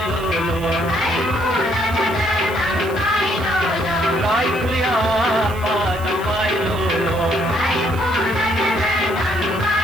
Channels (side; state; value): right; noise; hiss, 19 dB below the sound